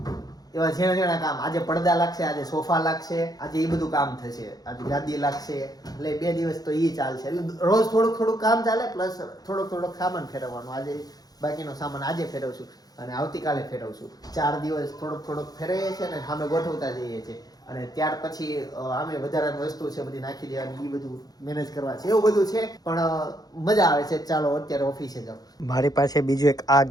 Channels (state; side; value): late; right; 0.19 ms